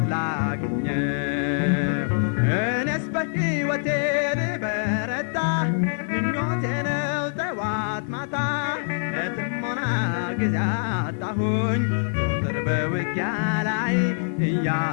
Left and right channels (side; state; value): right; silent; digital silence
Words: ላግኘው እኔስ በሕይወቴ ልበረታ ምኞቴ ነው ጠዋት ማታ ለጥሞና ጊዜ አጣሁኝ ዞትር በውጊያ ላይ